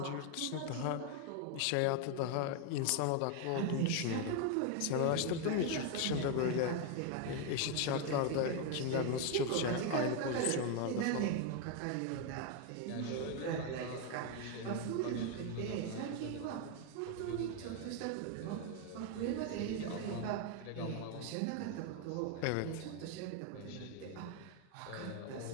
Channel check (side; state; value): both; different; correlation 0.01